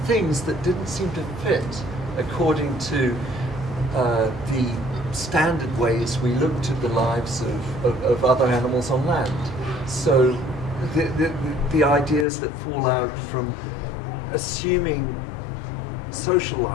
things that didn't seem to fit according to the standard ways we looked at the lives of other animals on land. So the ideas that fall out from assuming social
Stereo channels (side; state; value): right; drops out; at 12.2 s